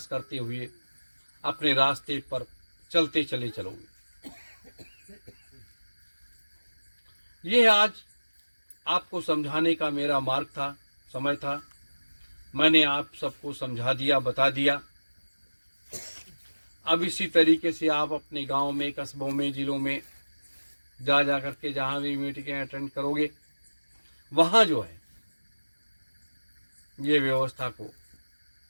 करते हुए अपने रास्ते पर चलते चले चलोगे। यह आज आपको समझाने का मेरा मार्ग था, समय था। मैंने आप सबको समझा दिया, बता दिया। अब इसी तरीके से आप अपने गांव में, कस्बों में, जिलों में जा करके जहां भी मीटिंगें अटेंड करोगे, वहां जो है ये व्यवस्था को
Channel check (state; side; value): inverted; both; correlation -1.00